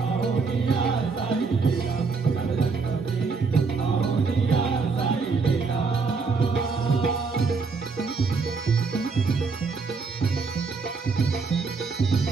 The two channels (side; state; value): left; quieter; 4.6 dB